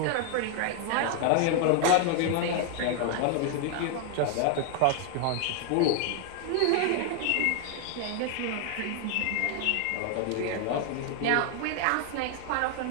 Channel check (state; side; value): different; both; correlation 0.00